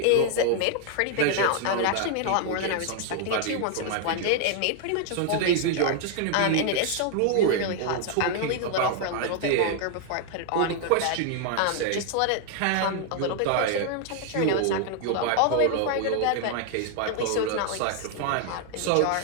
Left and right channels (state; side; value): different; both; correlation 0.00